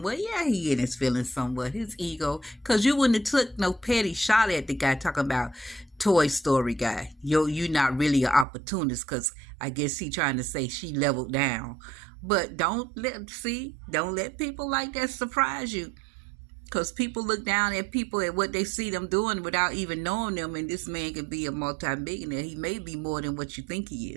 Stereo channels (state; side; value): drops out; left; at 8.5 s